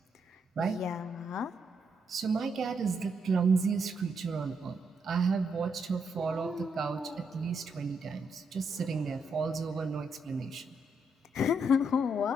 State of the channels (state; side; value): normal; both; correlation 0.78